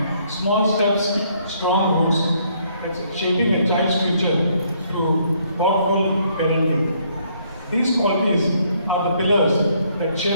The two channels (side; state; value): both; inverted; correlation -0.68